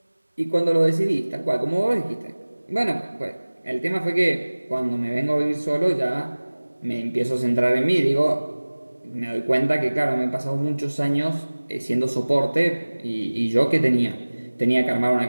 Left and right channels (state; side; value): inverted; both; correlation -1.00